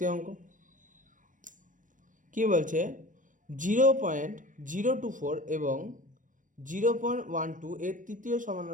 অঙ্ক। কি বলছে 0.024 এবং 0.12 এর তৃতীয়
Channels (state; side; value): late; left; 0.38 ms